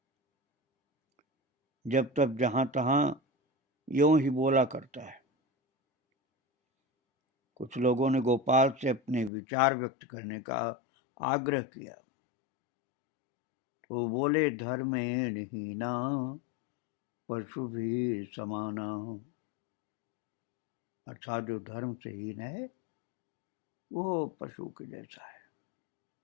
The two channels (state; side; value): drops out; right; at 9.3 s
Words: जब तक जहां तहां यूं ही बोला करता है। कुछ लोगों ने गोपाल से अपने विचार व्यक्त करने का आग्रह किया, तो बोले, धर्मेण हीना पशु भी समाना। अर्थात जो धर्म से हीन है वो पशु के जैसा है।